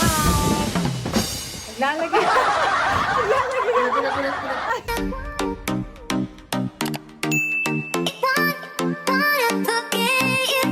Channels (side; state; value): both; identical; correlation 1.00